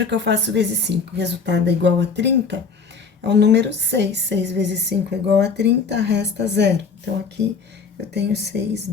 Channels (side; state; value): right; quieter; 5.1 dB